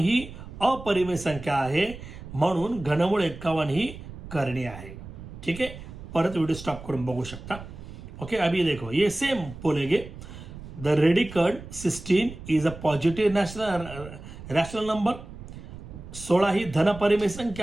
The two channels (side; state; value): right; noise; rumble, 13 dB below the sound